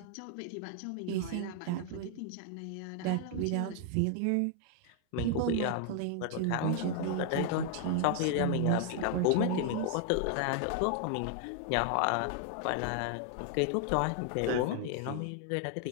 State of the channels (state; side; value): different; both; correlation 0.00